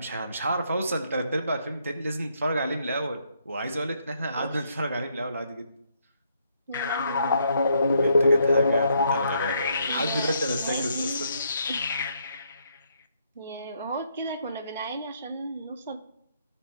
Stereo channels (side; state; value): both; inverted; correlation -0.73